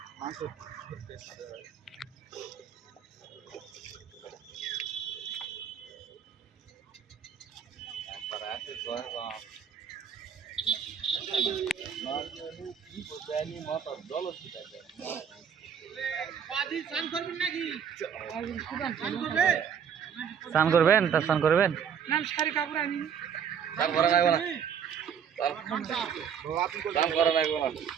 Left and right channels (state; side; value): quieter; left; 7.8 dB